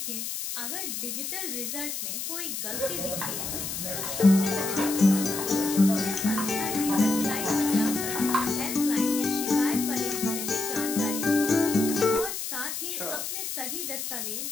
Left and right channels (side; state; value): left; noise; hiss, 5 dB below the sound